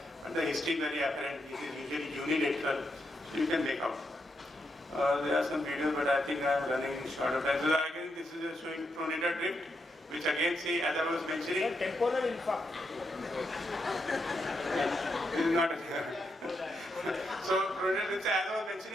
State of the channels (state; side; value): normal; both; correlation 0.82